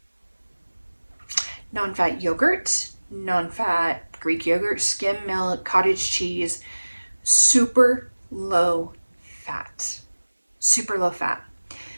Non-fat yogurt, non-fat Greek yogurt, skim milk, cottage cheese, super low fat. Super low fat.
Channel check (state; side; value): inverted; both; correlation -1.00